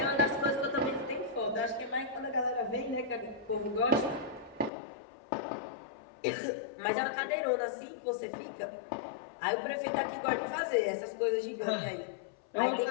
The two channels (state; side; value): drops out; right; at 4.7 s